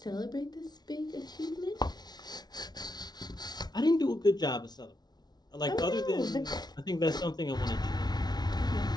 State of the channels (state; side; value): late; right; 0.19 ms